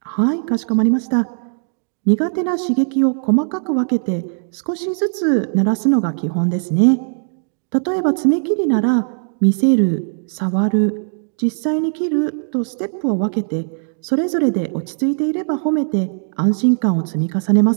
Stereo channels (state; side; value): silent; left; digital silence